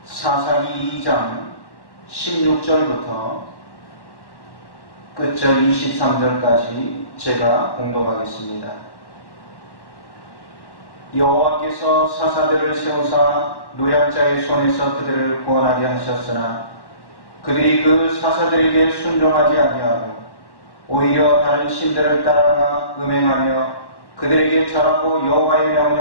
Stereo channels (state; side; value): late; right; 1.1 ms